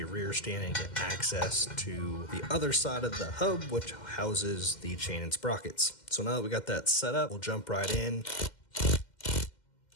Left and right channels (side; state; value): right; late; 2.1 ms